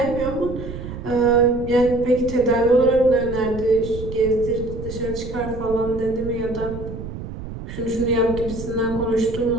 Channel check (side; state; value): right; noise; rumble, 9 dB below the sound